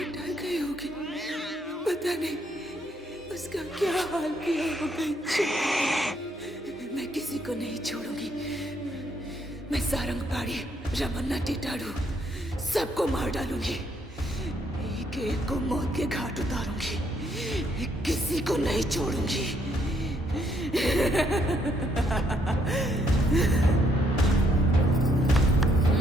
डर गई होगी, पता नहीं उसका क्या हाल किया होगा। मैं किसी को नहीं छोड़ूंगी। मैं सारंग पाड़ी, रमन्ना टिटाड़ू सबको मार डालूंगी। एक एक को मौत के घाट उतारूंगी। किसी को नहीं छोड़ूंगी।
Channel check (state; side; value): normal; both; correlation 0.71